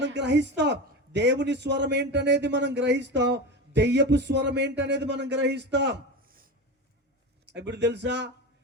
గ్రహిస్తాం దేవుని స్వరం ఏంటనేది, మనం గ్రహిస్తాం దెయ్యపు స్వరం ఏంటనేది మనం గ్రహిస్తాం. ఇప్పుడు తెలుసా?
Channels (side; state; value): both; normal; correlation 0.24